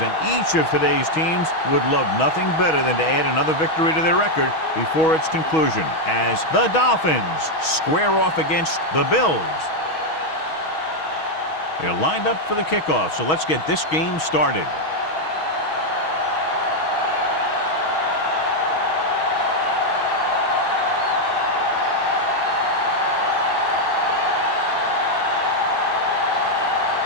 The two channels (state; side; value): late; right; 6.3 ms